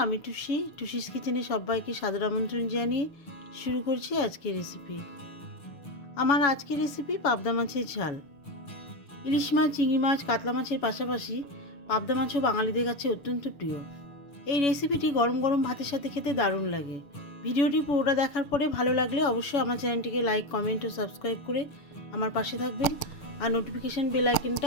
আমি টুসিস কিচেনে সবাইকে সাদর আমন্ত্রণ জানিয়ে শুরু করছি আজকের রেসিপি। আমার আজকের রেসিপি পাবদা মাছের ঝাল। ইলিশ মাছ, চিংড়ি মাছ, কাতলা মাছের পাশাপাশি পাবদা মাছও বাঙালিদের কাছে অত্যন্ত প্রিয়। এই রেসিপিটি গরম গরম ভাতের সাথে খেতে দারুণ লাগে। ভিডিওটি পুরোটা দেখার পরে ভালো লাগলে অবশ্যই আমার চ্যানেলটিকে লাইক, কমেন্ট ও সাবস্ক্রাইব করে আমার পাশে থাকবেন। আর নোটিফিকেশান বেল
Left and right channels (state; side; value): late; right; 7.1 ms